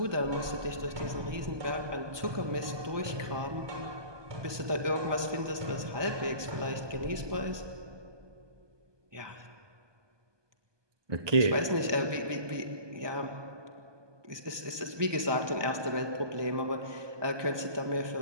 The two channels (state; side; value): late; left; 1.2 ms